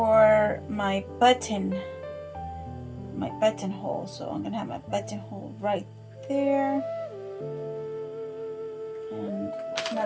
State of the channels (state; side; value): identical; both; correlation 1.00